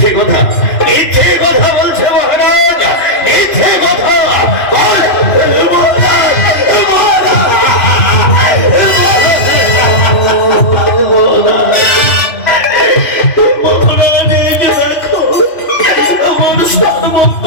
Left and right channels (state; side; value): late; right; 2.9 ms